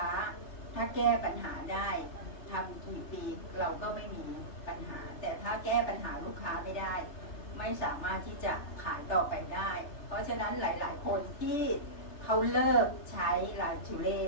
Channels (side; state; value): right; late; 3.3 ms